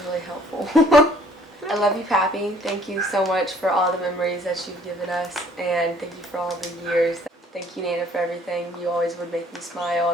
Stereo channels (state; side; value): normal; both; correlation 0.58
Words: really helpful. I love you, Pappy. Thank you so much for all the memories that you've given us, and thank you for all the years. Thank you, Nana, for everything. You always would make me smile